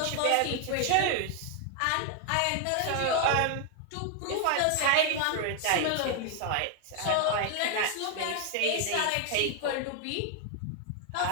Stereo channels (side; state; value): both; different; correlation 0.00